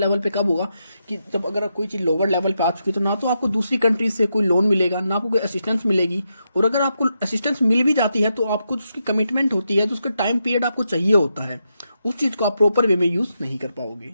पे कब होगा कि जब अगर कोई चीज़ लोअर लेवल पे आ चुकी तो ना तो आपको दूसरी कंट्री से कोई लोन मिलेगा, ना आपको कोई असिस्टेंस मिलेगी, और अगर आपको असिस्टेंस मिल भी जाती है तो आपको उसकी कमिटमेंट होती है, तो उसका टाइम पीरियड आपको चाहिए होता है, उस चीज़ को आप प्रॉपर वे में यूज़ नहीं कर पाओगे,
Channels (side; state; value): both; inverted; correlation -0.84